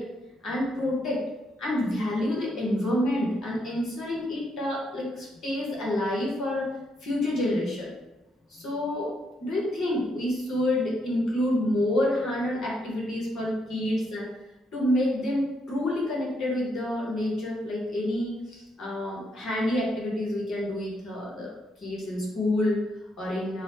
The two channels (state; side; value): normal; both; correlation 0.76